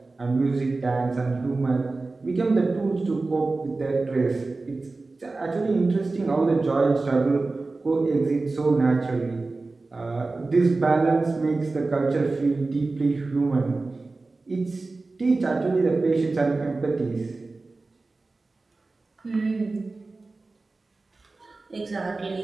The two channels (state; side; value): quieter; left; 3.5 dB